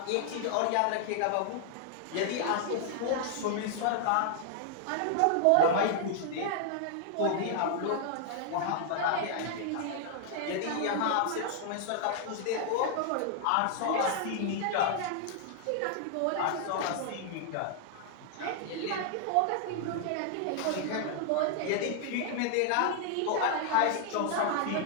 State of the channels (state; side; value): different; both; correlation 0.00